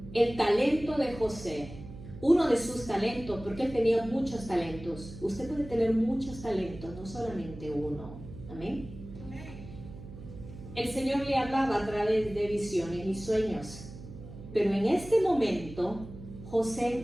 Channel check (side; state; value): right; noise; hum, 14 dB below the sound